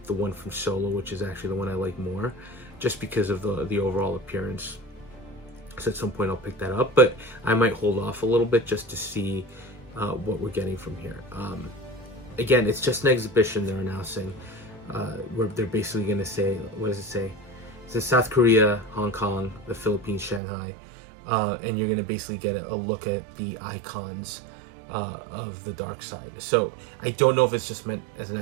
the one from Solo, which is actually the one I like more, just because of the overall appearance. So at some point I'll pick that up, but I might hold off a little bit just to see what we're getting from here. Again, it's just an exhibition they're announcing, where they're basically going to say, what does it say? It says South Korea, Hong Kong, the Philippines, Shanghai, and you're going to basically get a look at the icons of the dark side. So I don't know if it's just meant as an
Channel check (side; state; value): left; drops out; at 20.4 s